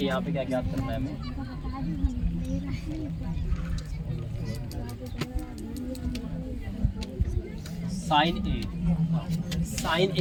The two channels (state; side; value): identical; both; correlation 1.00